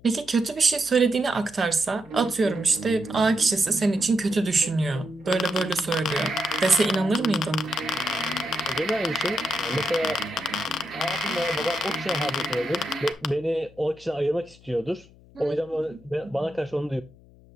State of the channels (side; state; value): left; noise; hum, 25 dB below the sound